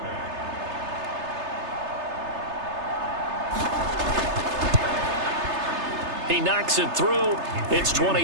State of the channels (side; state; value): left; late; 3.3 ms